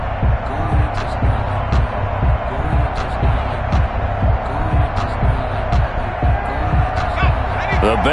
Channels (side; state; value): both; identical; correlation 1.00